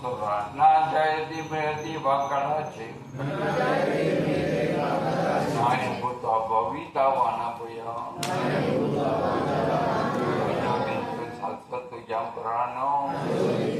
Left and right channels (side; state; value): both; identical; correlation 1.00